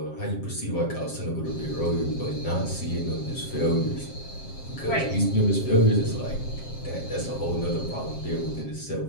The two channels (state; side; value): late; right; 7.5 ms